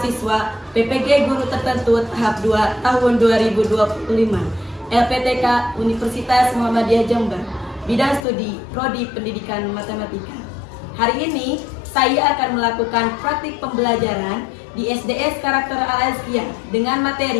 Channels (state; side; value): drops out; right; at 8.2 s